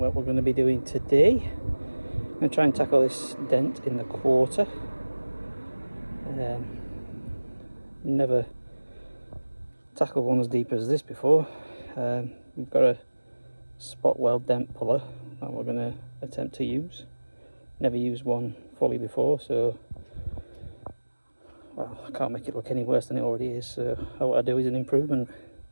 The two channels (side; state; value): both; inverted; correlation -1.00